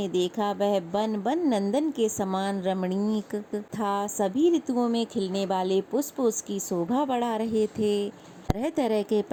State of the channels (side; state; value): both; identical; correlation 1.00